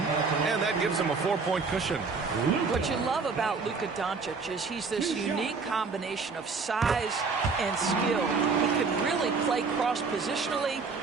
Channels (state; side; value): quieter; left; 4.7 dB